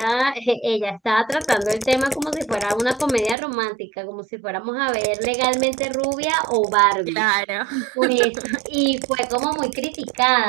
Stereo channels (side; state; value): left; drops out; at 3.4 s